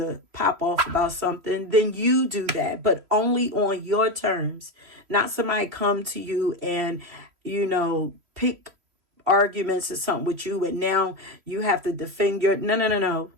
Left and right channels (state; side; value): late; left; 3.1 ms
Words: pop off about something, then you do that, but only on your terms. Not somebody come to you and, pick arguments or something with you, and now you have to defend your, no.